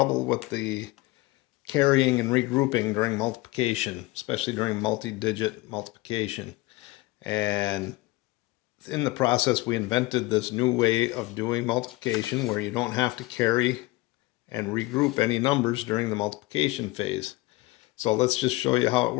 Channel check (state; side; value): quieter; right; 20.9 dB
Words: with the carrying and regrouping during multiplication, especially during multi-digit multiplication. And in the process we invented this new way of doing multiplication where you don't have to carry and regroup any numbers during the multiplication phase. So let's just show you how it